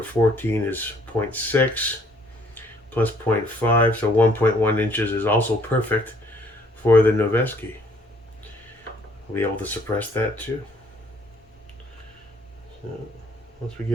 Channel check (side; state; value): both; normal; correlation 0.62